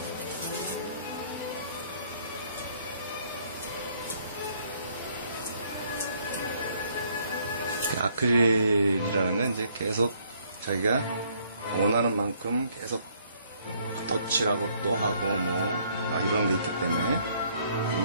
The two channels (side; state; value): both; inverted; correlation -0.65